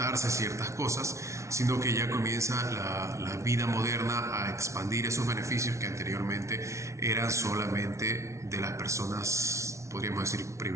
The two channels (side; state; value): left; late; 0.14 ms